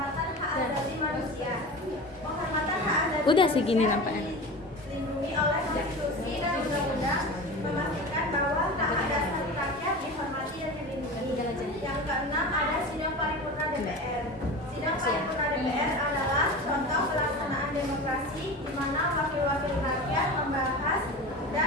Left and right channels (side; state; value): both; normal; correlation 0.31